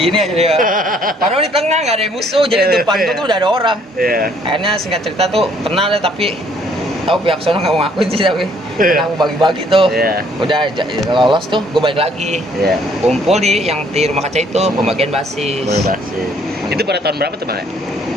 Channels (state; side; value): normal; both; correlation 0.63